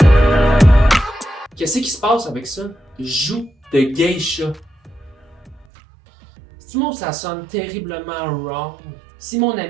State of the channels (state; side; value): drops out; left; at 5.7 s